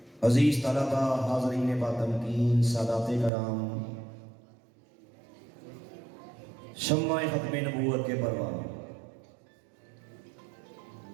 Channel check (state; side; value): drops out; left; at 3.3 s